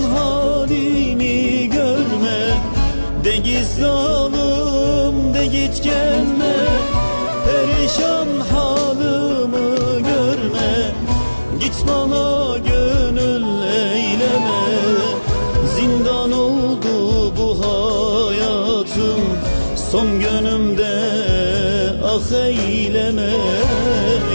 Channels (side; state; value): both; inverted; correlation -1.00